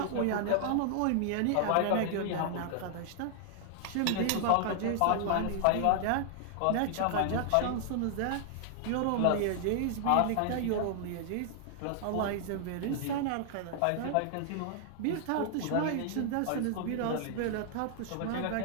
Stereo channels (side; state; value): both; different; correlation 0.00